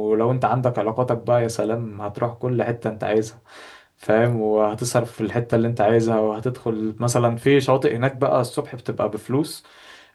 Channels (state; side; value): identical; both; correlation 1.00